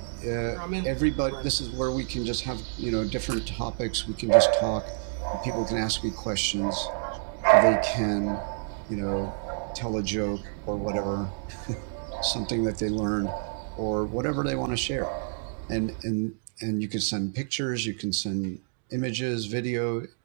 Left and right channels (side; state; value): left; silent; digital silence